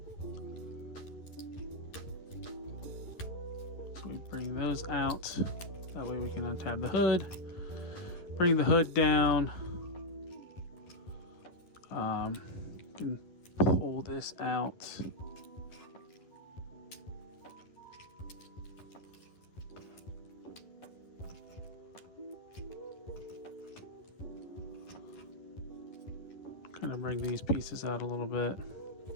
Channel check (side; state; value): right; late; 11 ms